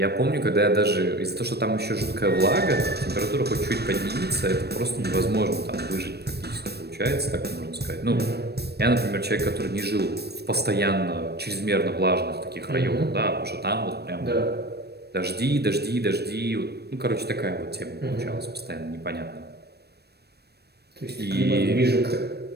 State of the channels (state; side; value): late; left; 0.47 ms